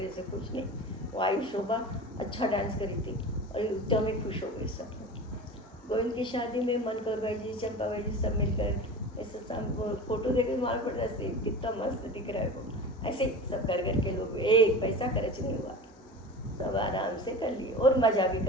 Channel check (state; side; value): normal; both; correlation 0.33